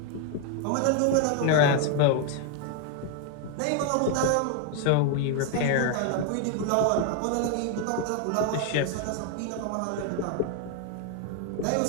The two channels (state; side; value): different; both; correlation 0.01